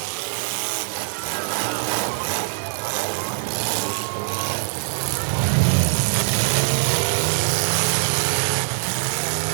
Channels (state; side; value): silent; left; 56 dB below the other